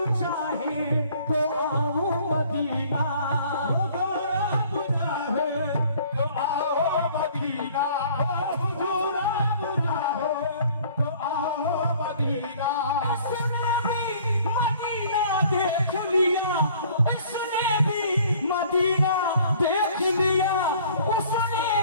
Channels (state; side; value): inverted; both; correlation -0.54